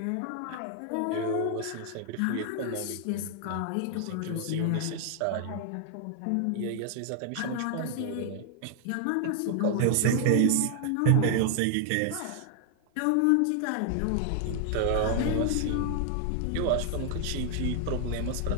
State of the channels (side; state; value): both; different; correlation 0.00